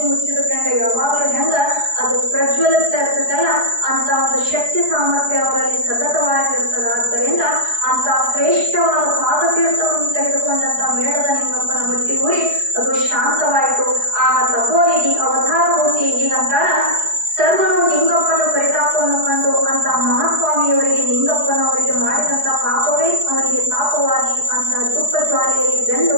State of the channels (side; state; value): left; late; 4.7 ms